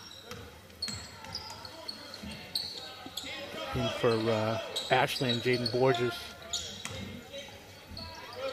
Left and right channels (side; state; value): both; identical; correlation 1.00